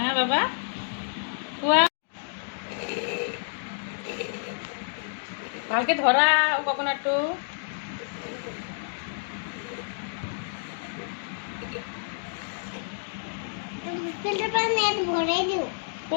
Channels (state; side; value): silent; right; digital silence